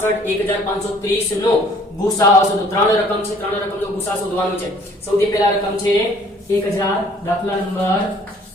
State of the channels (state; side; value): normal; both; correlation 0.57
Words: 1530 નો ગુસાઅ શોધો. ત્રણ રકમ છે, ત્રણ રકમનો ગુસાઅ શોધવાનો છે. સૌથી પહેલા રકમ છે 1000, દાખલા નંબર